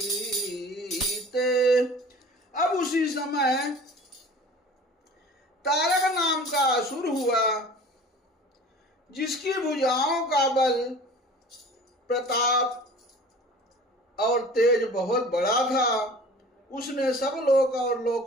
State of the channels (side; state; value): both; normal; correlation 0.43